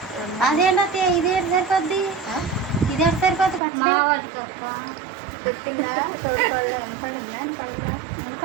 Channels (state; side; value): drops out; left; at 3.6 s